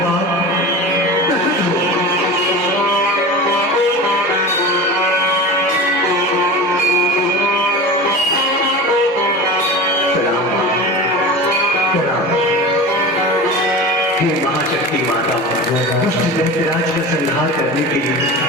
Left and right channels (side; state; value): both; normal; correlation 0.31